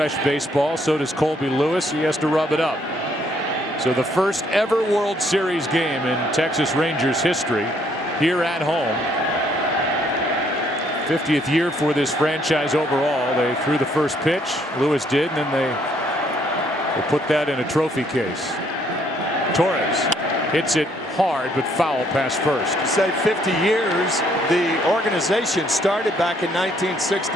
baseball. So does Colby Lewis. He has to rub it up. So the first ever World Series game in Texas Rangers history here at home. 50th year for this franchise overall. They threw the first pitch. Lewis did, and then they put that in a trophy case. Torres hits it hard, but foul past first. Say 50 years. The organization started back in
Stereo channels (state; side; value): normal; both; correlation 0.67